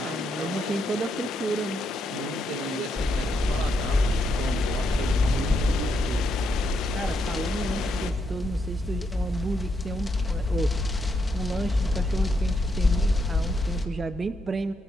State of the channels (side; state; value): both; normal; correlation 0.79